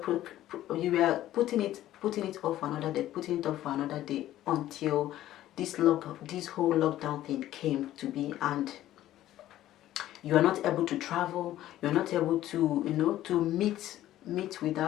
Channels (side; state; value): right; quieter; 13.7 dB